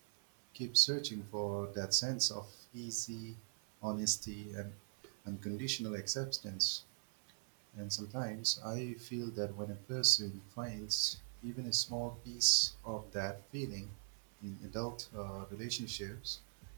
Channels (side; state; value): left; silent; 50 dB below the other